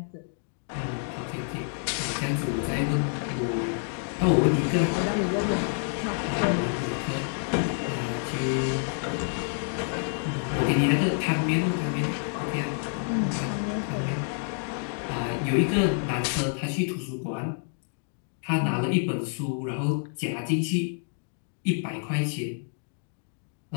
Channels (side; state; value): right; silent; 59 dB below the other